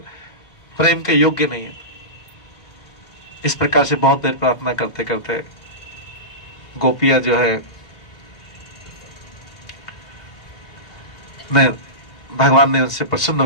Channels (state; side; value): late; right; 2.0 ms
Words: प्रेम के योग्य नहीं है। इस प्रकार से बहुत देर प्रार्थना करते करते गोपियां जो है भगवान ने उनसे प्रसन्न